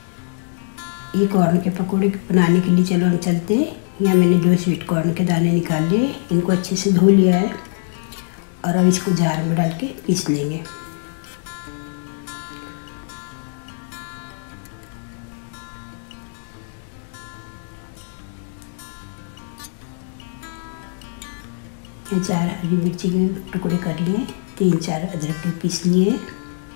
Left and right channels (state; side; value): silent; right; digital silence